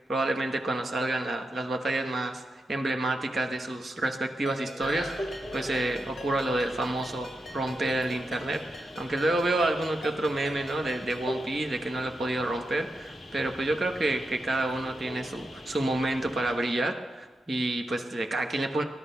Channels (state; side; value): normal; both; correlation 0.87